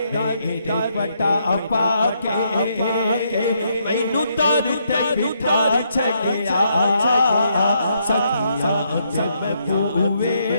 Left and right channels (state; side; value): inverted; both; correlation -0.75